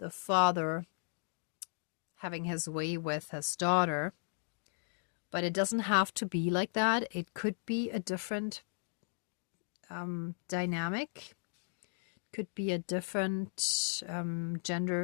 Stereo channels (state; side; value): silent; right; digital silence